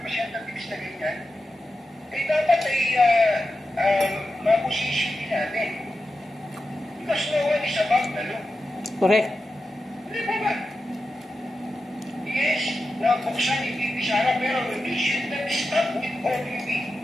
na ganyan, ay dapat ay mapusisyon din natin. Because no one is above the law. Correct. Hindi ba ba? Yes, nabuksan ibibisara pero we should not stop with OPP.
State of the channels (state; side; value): normal; both; correlation 0.91